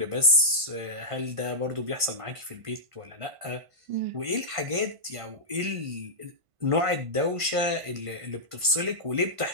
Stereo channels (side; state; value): left; late; 1.5 ms